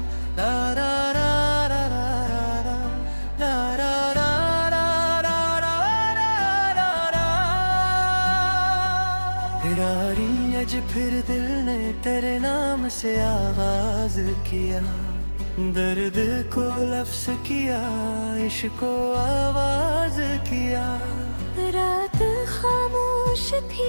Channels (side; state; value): both; inverted; correlation -1.00